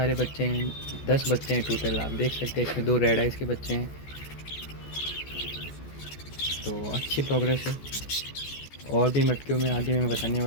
बच्चे हैं, 10 बच्चे हैं टोटल। आप देख सकते हैं इसमें 2 रेड आइज के बच्चे हैं, तो अच्छी प्रोग्रेस है। और भी मटकियों में आगे मैं बताने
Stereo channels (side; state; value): right; late; 14 ms